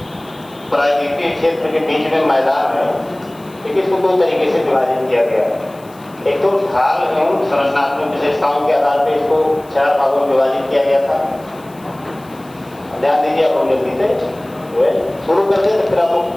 प्राकृतिक क्षेत्र के बीच में मैदान है, लेकिन इसको दो तरीके से विभाजित किया गया है। एक तो ढाल एवं संरचनात्मक विशेषताओं के आधार पर इसको 4 भागों में विभाजित किया गया था। ध्यान दीजिए, आप जल्दी से शुरू कर दे तो फिर आपको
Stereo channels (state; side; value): noise; left; hiss, 26 dB below the sound